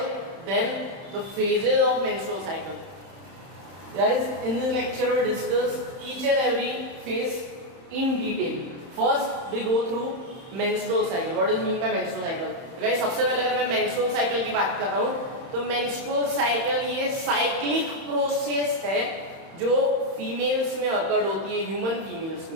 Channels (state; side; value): late; left; 31 ms